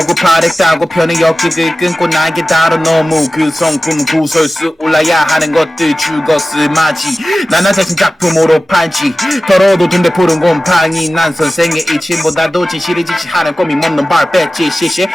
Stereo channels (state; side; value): normal; both; correlation 0.95